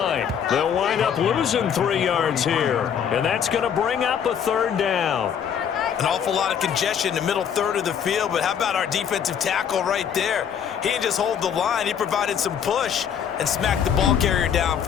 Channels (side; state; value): right; quieter; 8.2 dB